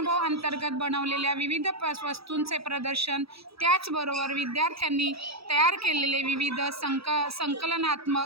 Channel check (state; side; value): late; left; 0.77 ms